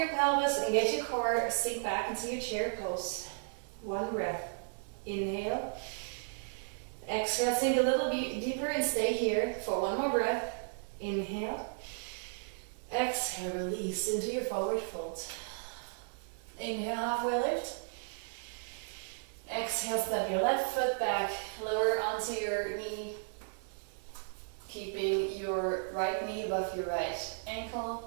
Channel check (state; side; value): silent; left; digital silence